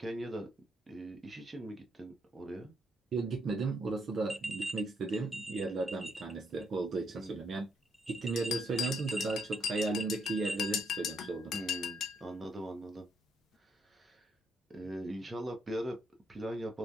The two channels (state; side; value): normal; both; correlation 0.75